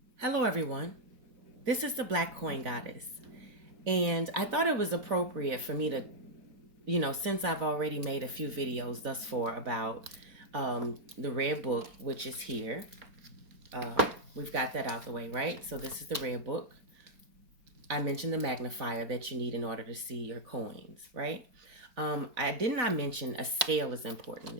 Hello, everyone. This is the Black Coin Goddess. And I thought it was appropriate for me to, since I've already made a few videos thus far about the red book, which is here. We've got that out the way, right? So this is the red book. I mentioned the magnifier that you need in order to see your coins, right? I did not mention a scale is important.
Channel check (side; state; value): left; late; 4.0 ms